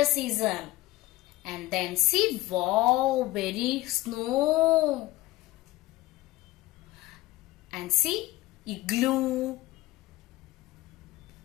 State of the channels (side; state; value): right; quieter; 18.2 dB